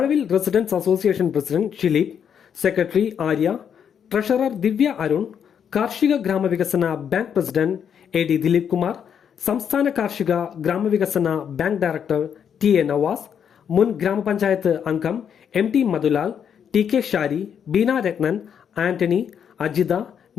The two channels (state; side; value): quieter; right; 8.0 dB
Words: residence association president Shileep, secretary Arya, treasurer Divya Arun, കാർഷിക ഗ്രാമവികസന bank president AD Dileep Kumar, സംസ്ഥാന കാർഷിക ഗ്രാമവികസന ബാങ്ക് ഡയറക്ടർ TA നവാസ്, മുൻ ഗ്രാമപഞ്ചായത്ത് അംഗം MT മധുലാൽ, TK ഷാരി, ബീന രത്നൻ, ആന്റണി, അജിത,